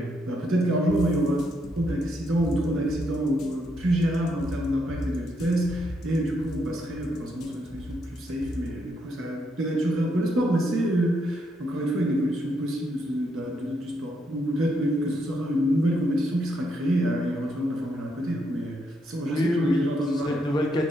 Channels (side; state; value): both; normal; correlation 0.77